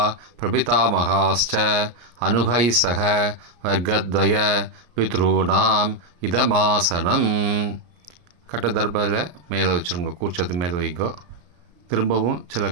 பிரபிதாமகாஸ்ச அனுகை சக வர்க்கத்வய பித்ருணாம் இதமாசனம். கட்டதர்பத்தில் மேலே வச்சுருங்க. கூர்ச்சத்து மேலே வைங்கோ. திரும்பவும் சில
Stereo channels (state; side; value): late; left; 34 ms